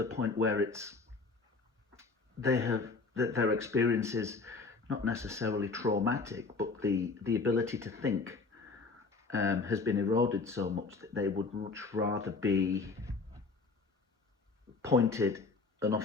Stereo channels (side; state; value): right; quieter; 4.1 dB